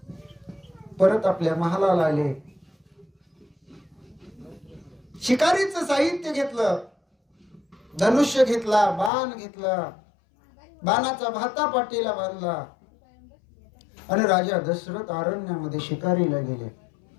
परत आपल्या महालाला आले. शिकारीचं साहित्य घेतलं, धनुष्य घेतला, बाण घेतला, बाणाचा भाता पाठीला बांधला आणि राजा दशरथ अरण्यामध्ये शिकारीला गेले.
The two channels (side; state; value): right; drops out; at 9.1 s